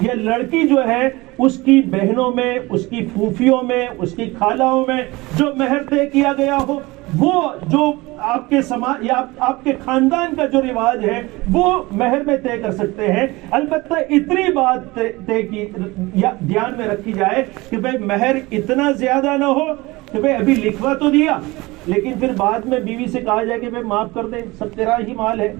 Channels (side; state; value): left; quieter; 21.9 dB